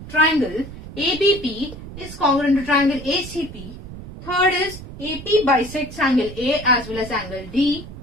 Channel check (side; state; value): right; noise; rumble, 13 dB below the sound